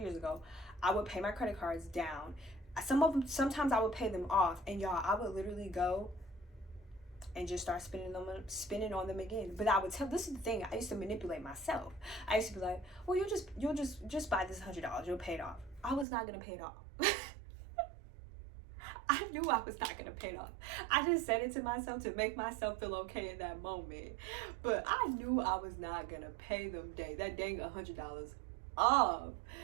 years ago, I would pay my credit cards down. Sometimes I would pay them off, and y'all, I would literally go and just start spending on them again. But I would this is the thing, I used to manipulate myself. I used to be like, well, you'll just buy this $100, you'll pay it off. I was not gonna pay it off. I knew I was not gonna pay it off. I just said it to myself to make myself feel okay in that moment. But I knew I was not gonna pay them that dang $100 off.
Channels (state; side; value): drops out; left; at 16.1 s